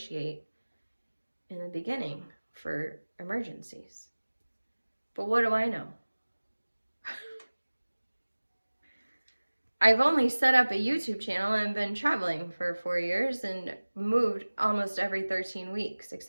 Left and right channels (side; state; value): both; inverted; correlation -1.00